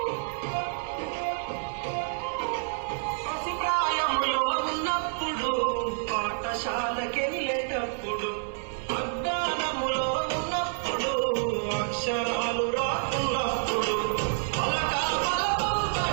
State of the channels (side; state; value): left; silent; 55 dB below the other